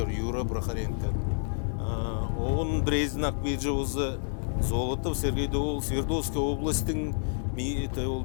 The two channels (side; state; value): right; silent; 59 dB below the other